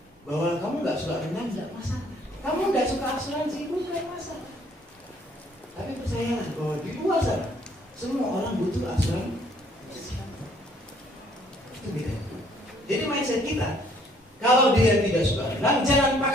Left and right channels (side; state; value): both; normal; correlation 0.62